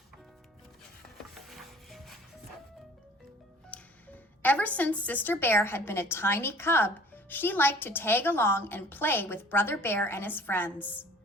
Ever since Sister Bear had been a tiny cub, she liked to tag along and play with Brother Bear and his friends.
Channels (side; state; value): both; normal; correlation 0.49